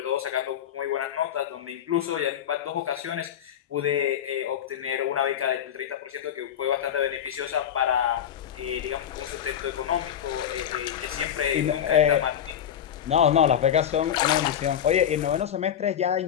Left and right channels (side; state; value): right; quieter; 9.6 dB